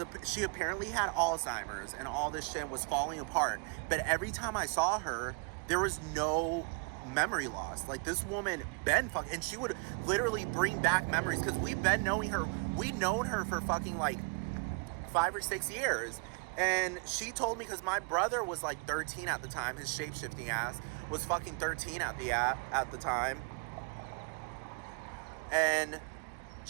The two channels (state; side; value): quieter; left; 33.5 dB